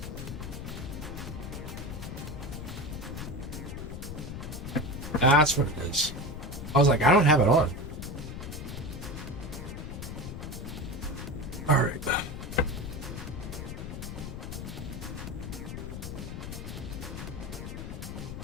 That's what it is. I was like, I don't have it on. All right.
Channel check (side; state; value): left; noise; rumble, 7 dB below the sound